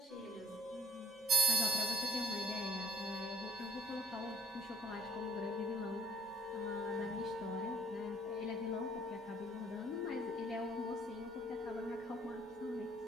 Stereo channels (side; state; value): both; normal; correlation 0.55